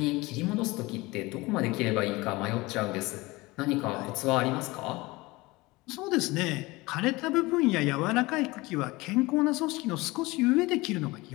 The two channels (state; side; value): quieter; right; 21.9 dB